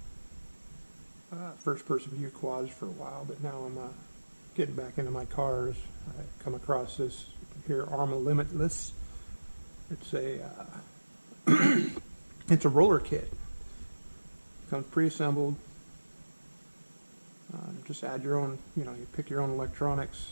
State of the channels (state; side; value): inverted; both; correlation -1.00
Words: first-person view quads for a while, but now I'm getting back into my cars. I come across this here, Arrma Limitless. It's a it's a roller kit. Comes pre-assembled. Just add your own, you pick your own